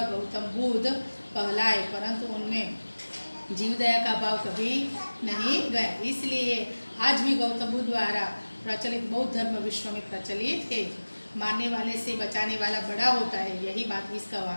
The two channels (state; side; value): inverted; both; correlation -1.00